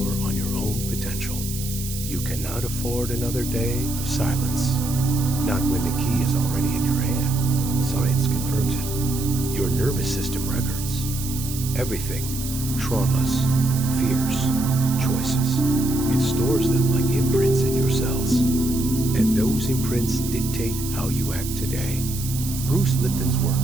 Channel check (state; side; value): noise; right; hiss, 9 dB below the sound